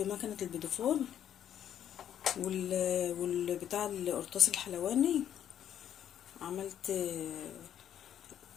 البوديفور والبتاع القرطاس الحلواني. عملت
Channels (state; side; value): quieter; right; 10.1 dB